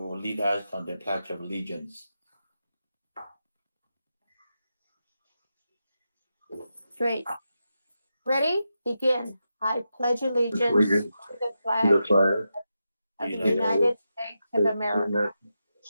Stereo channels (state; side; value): inverted; both; correlation -0.88